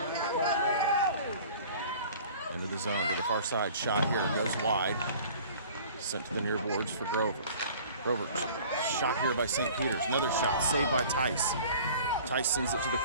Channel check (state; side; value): inverted; both; correlation -0.47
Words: Into the zone to the far side. Shot here. Goes wide. Sent to the near boards for Grover. Grover shot here by St. Peter's. Another shot. Saved by Tice. Tice sends it to the